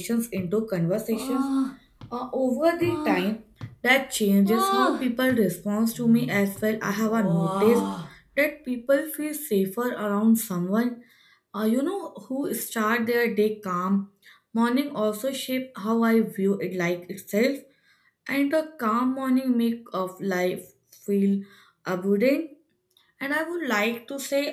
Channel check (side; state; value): both; identical; correlation 1.00